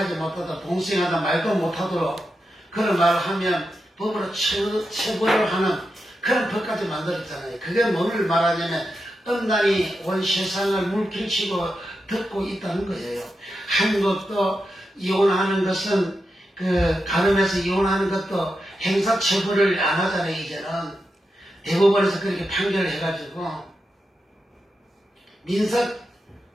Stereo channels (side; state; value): both; normal; correlation 0.88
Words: 못하도록 동성애하다 말도 못하도록 그런 말을 하면 법으로 처벌을 하는 그런 법까지 만들었잖아요. 그게 뭐를 말하냐면 음란이 온 세상을 물길치고 듣고 있다는 거예요. 한국도 이혼하는 것은 간음해서 이혼하는 것도 행사처벌을 안 하잖아요. 이제는 대법원에서 그렇게 판결을 해가지고 민사